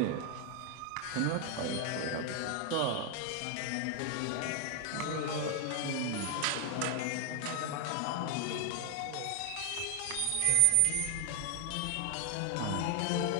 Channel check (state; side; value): different; both; correlation 0.00